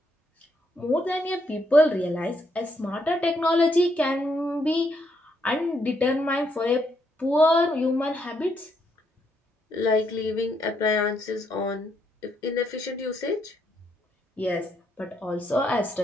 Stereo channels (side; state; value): both; normal; correlation 0.75